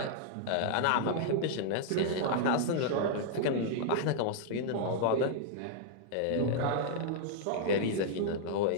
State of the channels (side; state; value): both; different; correlation -0.01